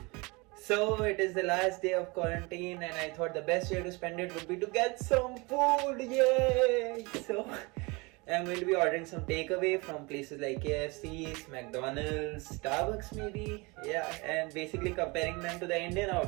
So it is the last day of quarantine, and I thought the best way to spend it would be to get some food. Yay! So I'm going to be ordering some takeaway from places like KFC's, McDonald's, Starbucks, maybe. Yeah, and basically comparing them to the Indian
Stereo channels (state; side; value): quieter; left; 26.5 dB